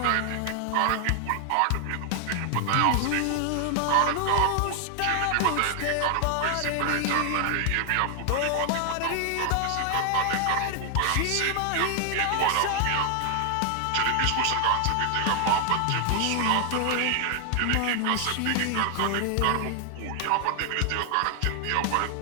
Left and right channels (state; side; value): different; both; correlation 0.00